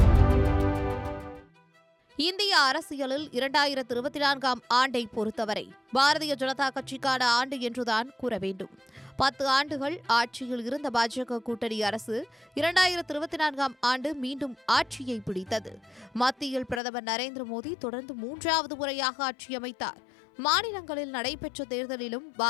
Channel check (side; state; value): right; drops out; at 16.8 s